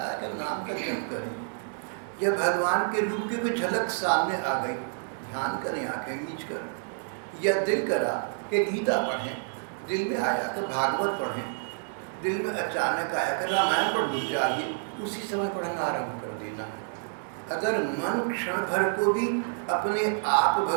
है कि नाम का जप करें, या भगवान के रूप की कोई झलक सामने आ गई, ध्यान करें आंखें मीच कर, या दिल करा कि गीता पढ़ें, दिल में आया कि भागवत पढ़ें, दिल में अचानक आया कि रामायण पढ़नी चाहिए, उसी समय पढ़ना आरंभ कर देना। अगर मन क्षण भर को भी अपने आप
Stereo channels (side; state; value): left; silent; digital silence